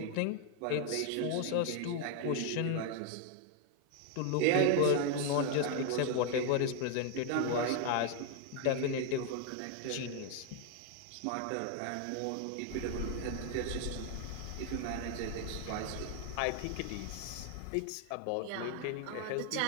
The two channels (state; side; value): different; both; correlation 0.01